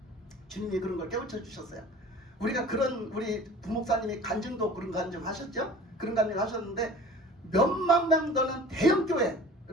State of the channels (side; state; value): both; normal; correlation 0.42